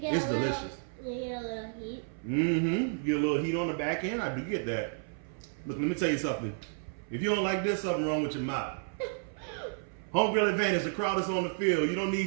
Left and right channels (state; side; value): silent; left; 57 dB below the other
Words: delicious. You get a little heat. Mm-hmm. Get a little heat on the back end. I do get that. Look, let me tell you something. If you don't like this, something wrong with your mouth. Home grill advantage. The crowd is on the field. You don't